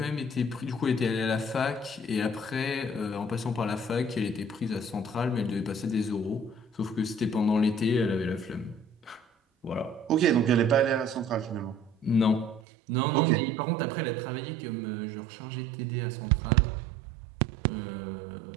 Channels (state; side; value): drops out; left; at 12.6 s